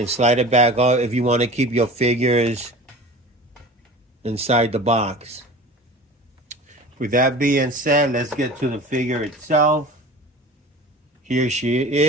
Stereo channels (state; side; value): normal; both; correlation 0.38